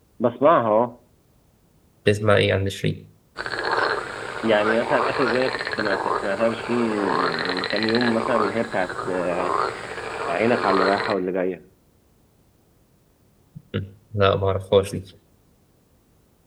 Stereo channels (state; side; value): identical; both; correlation 1.00